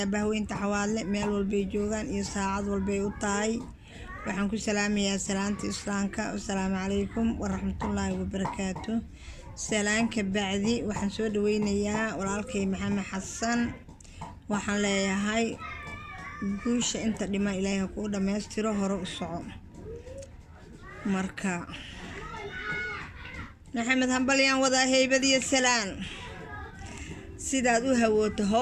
bahweynta xawaadle meel walbay joogaan iyo saacad walbay u tahay. waxaan ku salaamayaa salaanta islaamka. Assalaamu calaykum waraxmatullaahi wabarakaatuh. salaanka bacdi waxaan soo dhaweynayaa walaalkay maxamed xasan. waxaan leeyahay guusha inta dhima ilaahay ku dhameystiro, hore u soco. marka maxamed hambalyaan wadaa heybad iyo salaan, sidaad u hawooto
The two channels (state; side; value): identical; both; correlation 1.00